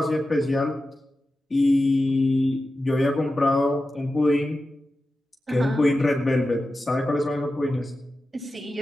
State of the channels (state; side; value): normal; both; correlation 0.93